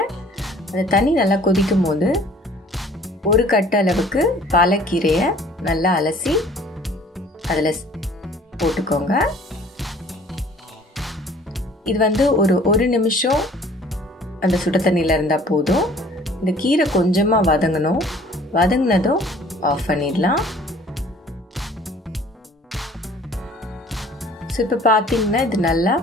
அந்த தண்ணி நல்லா கொதிக்கும் போது ஒரு கட்டு அளவுக்கு பாலக்கீரையை நல்லா அலசி அதில் போட்டுக்கோங்க. இது ஒரு நிமிஷம் அந்த சுட தண்ணியில் இருந்தால் போதும். இந்த கீரை கொஞ்சமாக வதங்கணும். வதங்கினதும் ஆஃப் பண்ணிடலாம். ஸோ இப்போ பார்த்தீங்கன்னா இது நல்லா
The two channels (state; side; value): normal; both; correlation 0.52